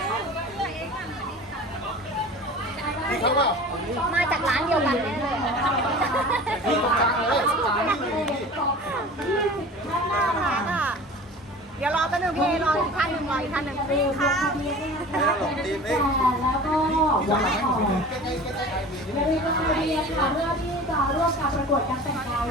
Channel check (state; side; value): normal; both; correlation 0.39